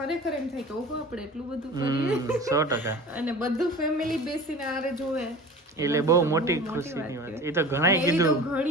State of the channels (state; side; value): normal; both; correlation 0.38